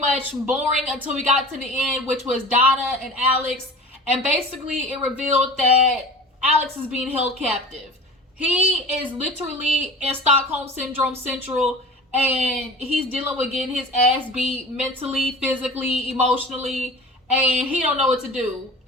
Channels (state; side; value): normal; both; correlation 0.38